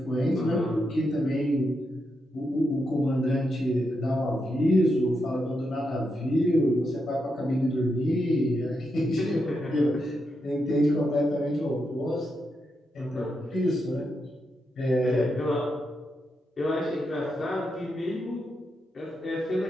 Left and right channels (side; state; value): both; normal; correlation 0.84